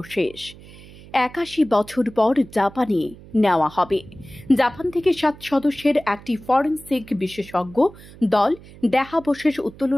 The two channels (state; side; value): noise; right; hum, 20 dB below the sound